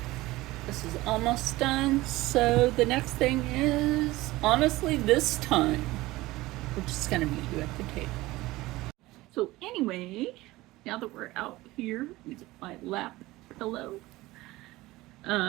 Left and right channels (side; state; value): left; quieter; 18.9 dB